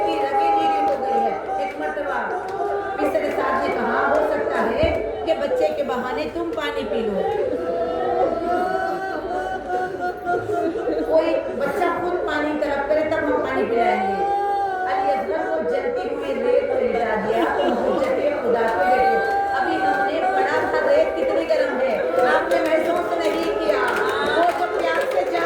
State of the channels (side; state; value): both; identical; correlation 1.00